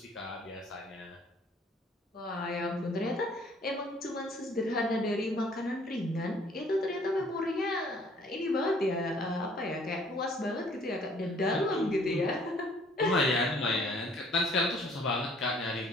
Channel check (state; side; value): normal; both; correlation 0.59